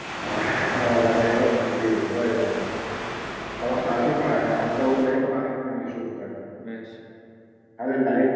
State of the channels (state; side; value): identical; both; correlation 1.00